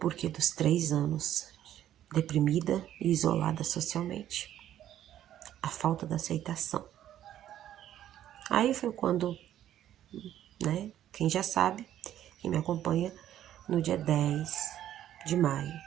dos 3 anos, deprimida e isolada socialmente. A falta da aceitação. Aí foi quando, né, quem já sabe, quem me acompanha, no dia 10 de maio,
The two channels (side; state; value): left; quieter; 11.7 dB